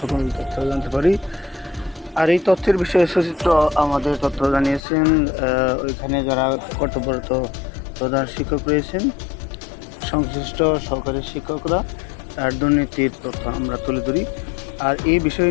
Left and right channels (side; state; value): right; drops out; at 4.8 s